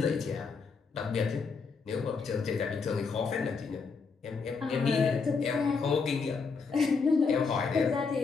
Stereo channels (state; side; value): quieter; right; 5.0 dB